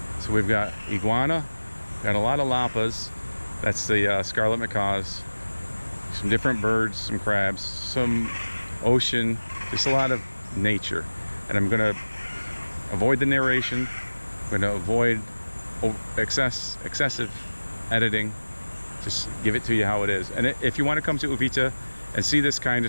So we've got iguana, got a lot of lapas, that's the Scarlet Macaws, some different birds, some crabs, some ocean, just a lot of nature. And I'm gonna avoid the narration, I'm gonna avoid excessive editing, just give it to you how it is. And if you want to come to Uvita and see this kind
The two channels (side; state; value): both; inverted; correlation -1.00